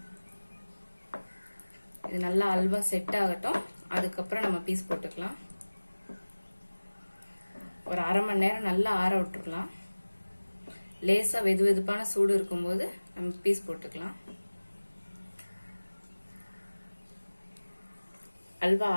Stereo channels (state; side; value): inverted; both; correlation -1.00